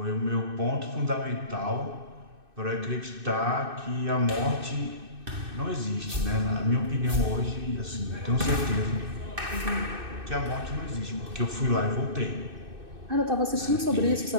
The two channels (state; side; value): late; left; 2.6 ms